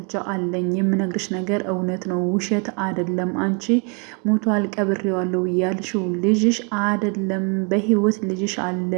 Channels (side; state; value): left; quieter; 35.8 dB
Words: አለኝ፣ የምነግርሽ ነገር እውነት ነው፣ ውሸት አይደለም። አንቺ ሞቷል ቀብሬዋለሁ ያልሽው ልጅሽ አይደለም፣ በህይወት ልጅሽ አለ፣